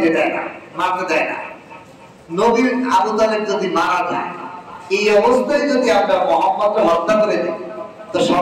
দেয় না, মারতে দেয় না। নবীর আবু তালেব যদি মারা যায়, এই অবস্থায় যদি আমরা মুহাম্মদকে হত্যা করে দিই, তো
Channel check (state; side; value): identical; both; correlation 1.00